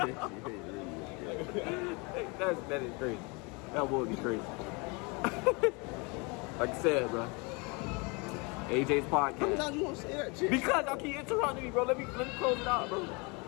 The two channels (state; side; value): quieter; right; 29.6 dB